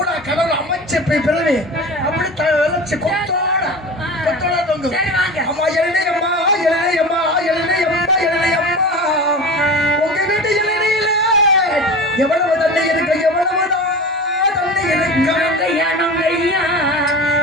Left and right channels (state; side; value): normal; both; correlation 0.32